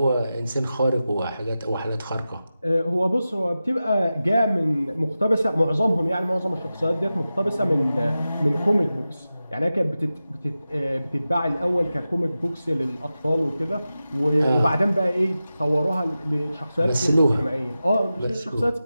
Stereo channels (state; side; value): inverted; both; correlation -0.93